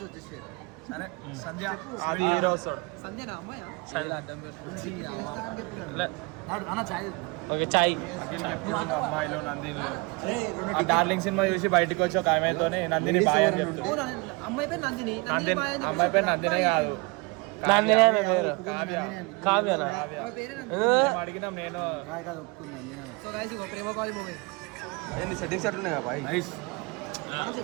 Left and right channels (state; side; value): quieter; left; 28.2 dB